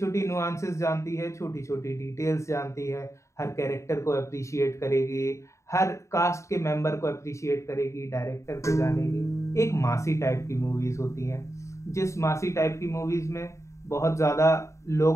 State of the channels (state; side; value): late; right; 0.14 ms